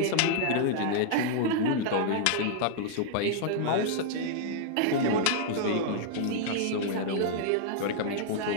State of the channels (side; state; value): both; different; correlation -0.01